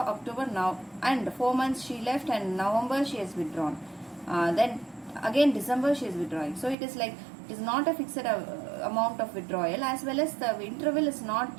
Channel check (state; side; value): drops out; left; at 6.8 s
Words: now, and 4 months she left, and November she has withdrawn. Then again December she is withdrawing. So it is like, it is not a fixed amount of withdrawal, as well as the interval is not